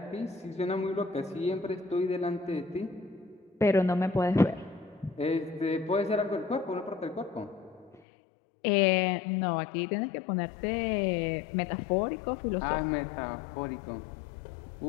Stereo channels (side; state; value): right; drops out; at 8.0 s